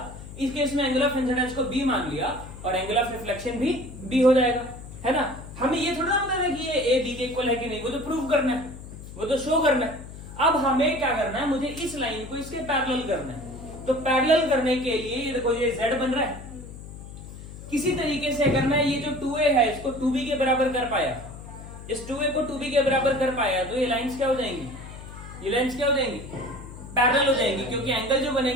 इस केस में एंगल ऑफ इंसिडेंस को बी मान लिया और एंगल ऑफ रिफ्लेक्शन भी बी हो जाएगा, है ना? हमें ये थोड़ा पता है कि ये ए बी के इक्वल है कि नहीं, वो तो प्रूव करना है, वो तो शो करना है। अब हमें क्या करना है, मुझे इस लाइन को इसके पैरेलल करना है। तो पैरेलल करने के लिए ये देखो, ये z बन रहा है। किसी तरीके से अगर मैं ये जो 2a है इसको 2b के बराबर कर पाया, इस 2a को 2b के बराबर कर पाया, तो ये लाइंस क्या हो जाएंगी? ये लाइंस क्या हो जाएंगी? पैरेलल हो जाएंगी, क्योंकि एंगल जो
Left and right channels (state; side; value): noise; left; hum, 14 dB below the sound